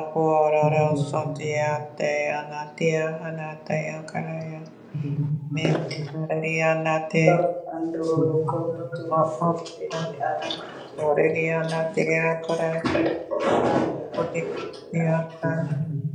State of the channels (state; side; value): identical; both; correlation 1.00